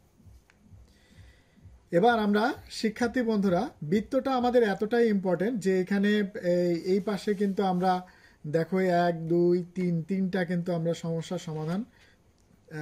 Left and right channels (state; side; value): identical; both; correlation 1.00